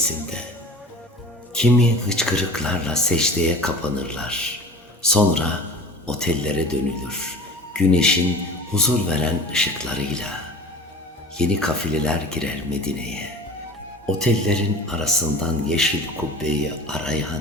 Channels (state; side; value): normal; both; correlation 0.40